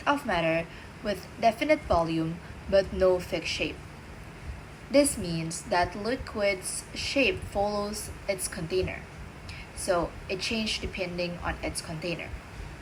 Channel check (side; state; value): both; identical; correlation 1.00